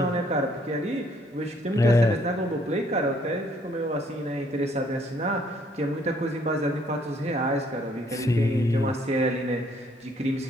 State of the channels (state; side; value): normal; both; correlation 0.65